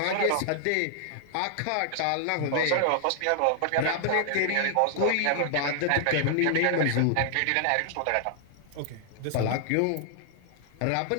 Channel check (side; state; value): both; different; correlation 0.00